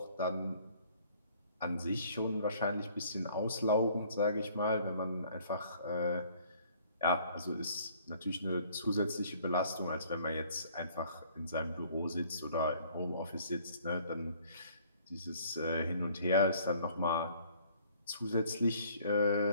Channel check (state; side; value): inverted; both; correlation -0.58